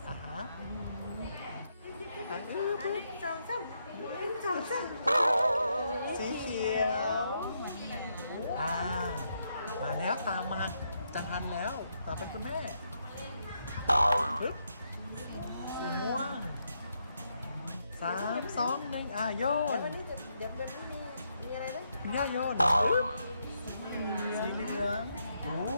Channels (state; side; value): inverted; both; correlation -0.79